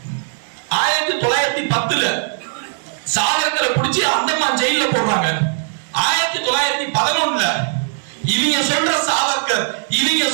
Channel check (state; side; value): silent; left; digital silence